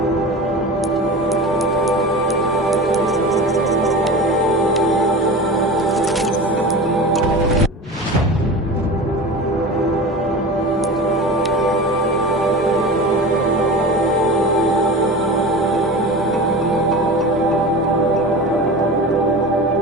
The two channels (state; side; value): normal; both; correlation 0.32